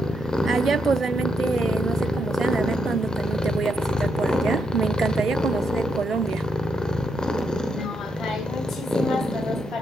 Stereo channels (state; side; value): normal; both; correlation 0.80